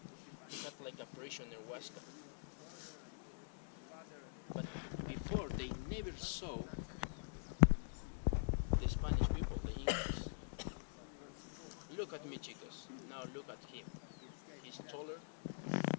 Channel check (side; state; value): right; silent; digital silence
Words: He had like a prisoner Huasca. But before, they never saw the Spanish people, the Incas. Look at me, chicos. Now look at him. He's taller.